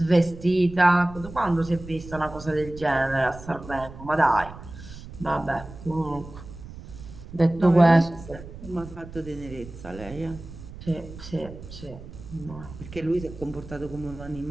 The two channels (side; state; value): right; noise; rumble, 15 dB below the sound